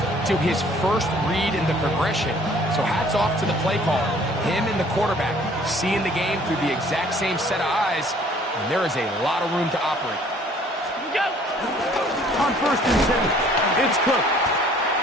to his first read in the progression. So hats off to the play caller. Him and the quarterback seeing the game through the exact same set of eyes, and there is a lot of room to operate. On first and 10, it's Cook.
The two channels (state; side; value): normal; both; correlation 0.56